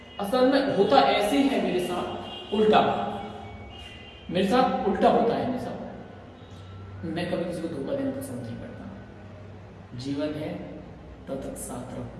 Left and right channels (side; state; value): both; identical; correlation 1.00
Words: असल में होता ऐसे है मेरे साथ उल्टा, मेरे साथ उल्टा होता है। मेरे साथ मैं कभी किसी को धोखा देना पसंद नहीं करता। जीवन है तब तक साथ रहो,